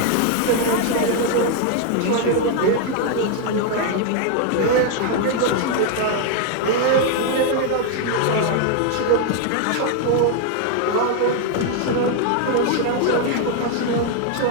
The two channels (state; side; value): different; both; correlation 0.01